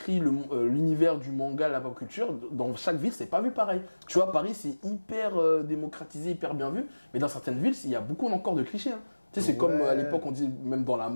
l'univers du manga, la pop culture. Dans chaque ville, c'est pas vu pareil. Tu vois, Paris, c'est hyper démocratisé, hyper bien vu. Mais dans certaines villes, il y a beaucoup encore de clichés. Hein. Tu sais, c'est comme à l'époque, on dit, même dans la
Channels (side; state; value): both; inverted; correlation -1.00